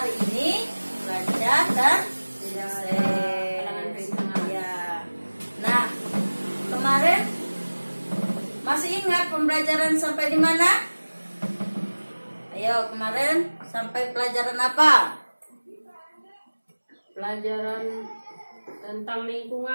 ini lancar dan sukses. Ya. Nah, kemarin masih ingat pembelajaran sampai di mana? Ayo, kemarin sampai pelajaran apa? Pelajaran tentang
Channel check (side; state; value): both; inverted; correlation -1.00